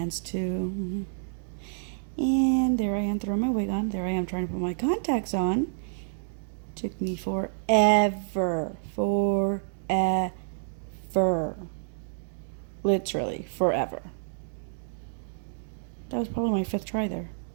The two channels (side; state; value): left; silent; digital silence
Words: too. And there I am throwing my wig on. There I am trying to put my contacts on. Took me forever. Literally forever. That was probably my 5th try there.